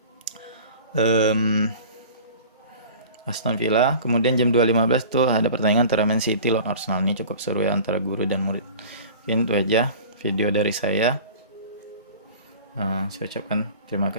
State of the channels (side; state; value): both; inverted; correlation -0.41